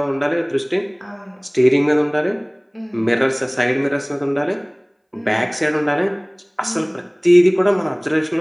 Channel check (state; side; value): identical; both; correlation 1.00